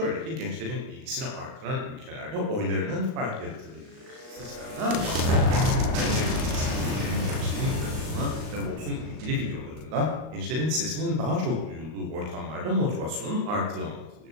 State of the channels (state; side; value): late; left; 38 ms